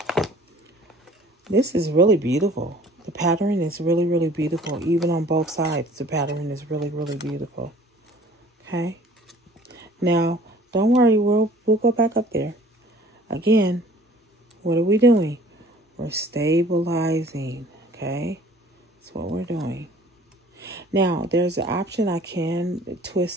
This is really beautiful. The pattern is really, really beautiful. Even on both sides, the pattern is really, really beautiful. Okay. Now, don't worry. We'll go back up there. Again, what are we doing? We're stabilizing. Okay. That's what we're doing. Now, there's an option. I can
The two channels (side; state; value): both; normal; correlation 0.51